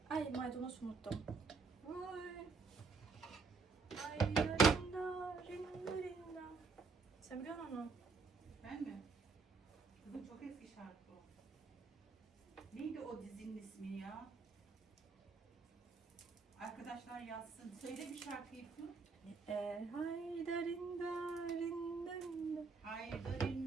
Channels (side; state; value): left; quieter; 4.6 dB